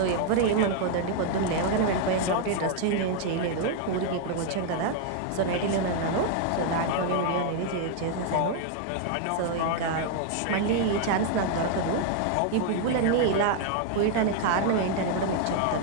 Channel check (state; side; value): different; both; correlation 0.00